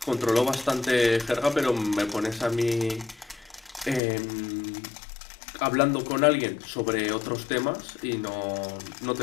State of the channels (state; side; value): drops out; right; at 4.0 s